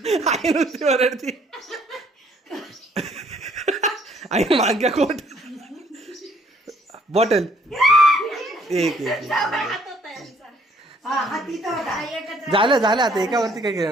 आई नुसती ओरडती. आई माग्या कोट. बॉटल. एक हा हा तिथं होता. झालं आता एकावरती काय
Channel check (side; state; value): both; normal; correlation 0.63